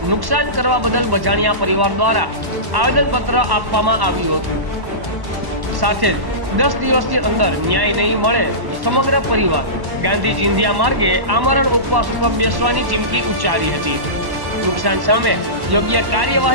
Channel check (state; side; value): late; left; 1.1 ms